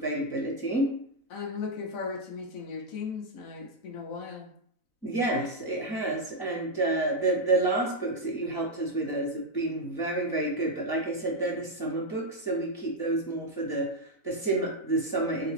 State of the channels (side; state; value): right; late; 4.0 ms